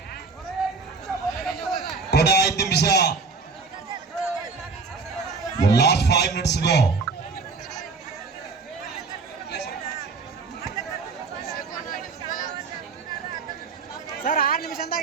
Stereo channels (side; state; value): left; quieter; 4.4 dB